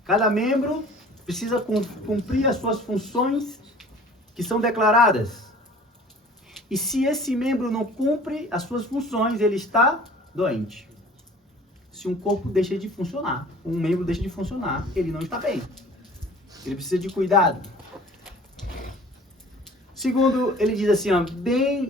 Cada membro precisa cumprir as suas funções que são declaradas. E se esse membro não cumpre as suas funções, ele está doente. Se um corpo deixa de funcionar, um membro deixa de funcionar, ele não está bem. Ele precisa de cuidado. Segundo, ele diz assim, ó,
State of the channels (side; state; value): both; normal; correlation 0.48